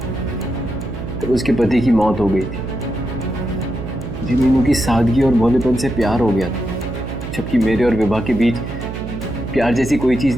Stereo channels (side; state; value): right; noise; hum, 8 dB below the sound